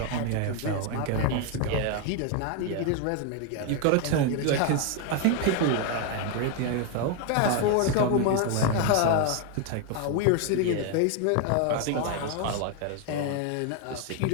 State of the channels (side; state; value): both; different; correlation 0.01